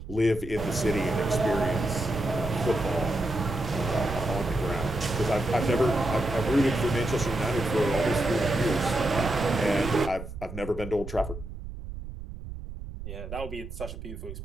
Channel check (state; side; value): noise; right; rumble, 11 dB below the sound